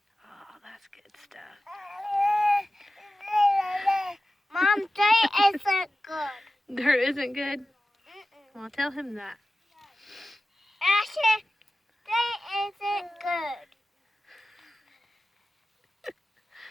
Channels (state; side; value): normal; both; correlation 0.95